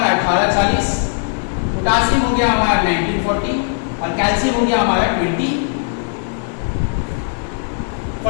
1840, पोटासियम हो गया हमारा 1940, और कैल्शियम हो गया हमारा 2040।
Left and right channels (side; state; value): right; silent; digital silence